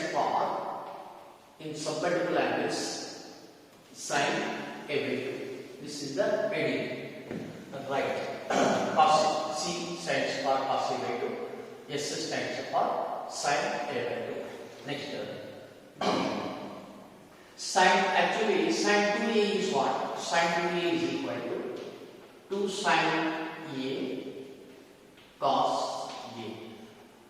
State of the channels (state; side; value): identical; both; correlation 1.00